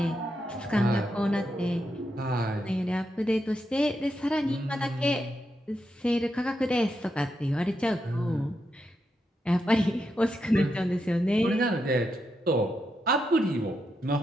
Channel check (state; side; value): normal; both; correlation 0.84